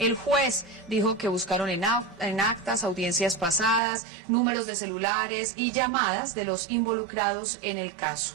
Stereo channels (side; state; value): left; drops out; at 3.8 s